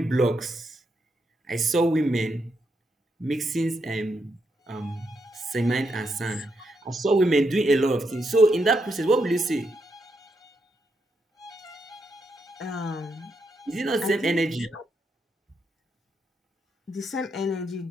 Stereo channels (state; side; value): normal; both; correlation 0.81